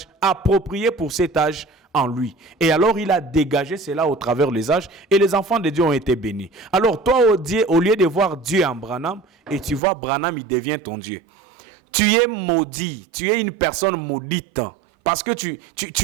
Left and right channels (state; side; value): drops out; left; at 9.8 s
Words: approprié pour cet âge en lui. Et alors il a dégagé cela au travers des âges et les enfants de Dieu ont été bénis. Alors toi, au lieu de voir Dieu en Branham, et tu vois Branham, il devient ton Dieu. Tu es maudit, tu es une personne maudite. Parce que